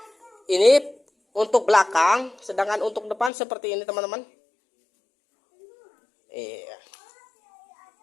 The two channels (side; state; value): right; drops out; at 3.3 s